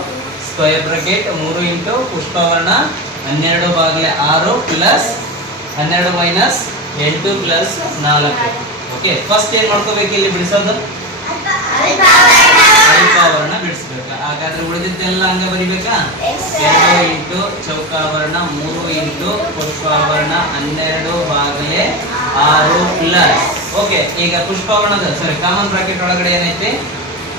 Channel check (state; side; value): normal; both; correlation 0.18